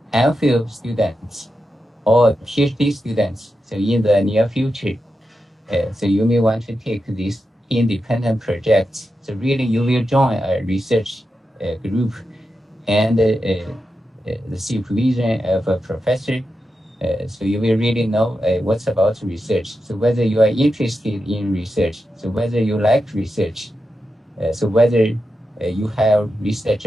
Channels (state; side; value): normal; both; correlation 0.89